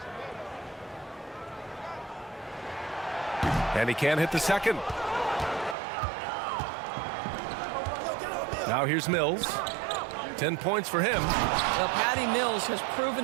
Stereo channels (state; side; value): drops out; left; at 5.8 s